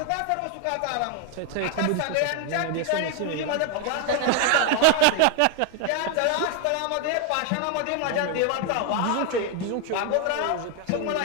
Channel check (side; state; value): both; different; correlation 0.01